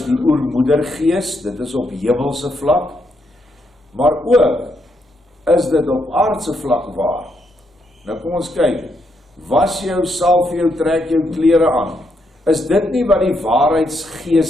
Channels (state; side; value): normal; both; correlation 0.77